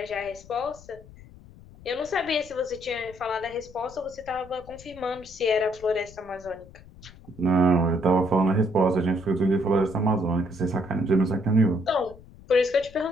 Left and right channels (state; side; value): noise; left; rumble, 21 dB below the sound